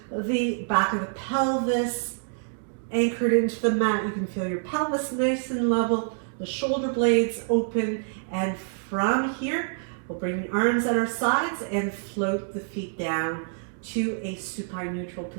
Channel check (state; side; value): silent; left; digital silence